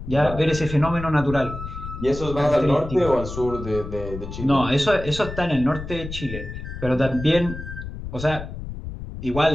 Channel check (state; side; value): noise; left; rumble, 9 dB below the sound